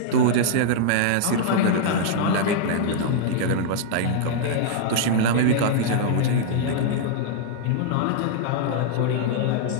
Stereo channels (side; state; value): both; different; correlation -0.01